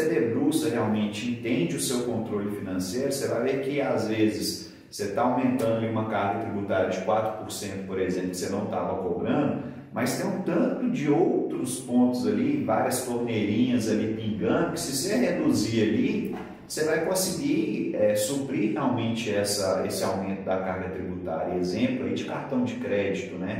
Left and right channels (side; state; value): both; identical; correlation 1.00